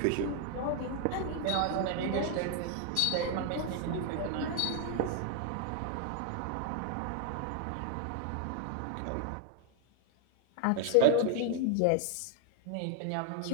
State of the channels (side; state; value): both; different; correlation 0.00